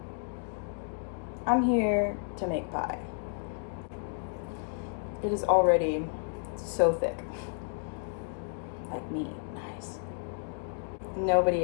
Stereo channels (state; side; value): silent; right; digital silence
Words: I'm here to make pie. It is already so thick. Like me. Nice. Nobody